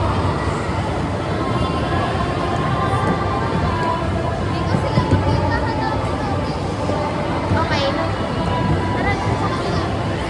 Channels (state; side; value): identical; both; correlation 1.00